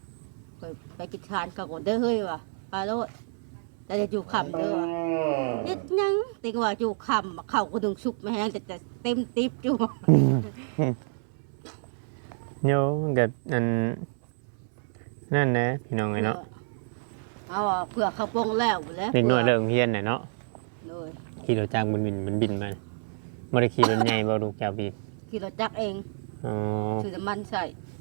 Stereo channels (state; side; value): silent; left; 59 dB below the other